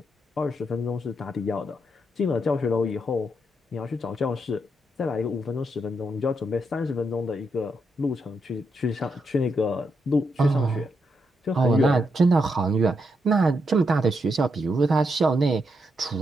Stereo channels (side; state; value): both; normal; correlation 0.81